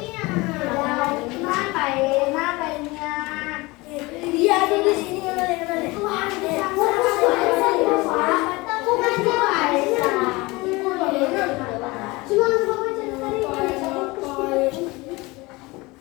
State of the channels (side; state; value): right; quieter; 23.1 dB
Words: Dia ada di sini.